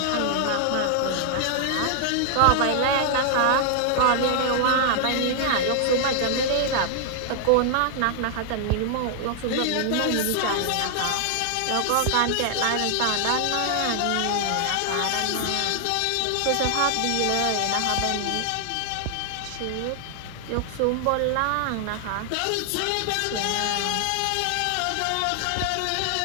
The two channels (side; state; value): both; different; correlation 0.00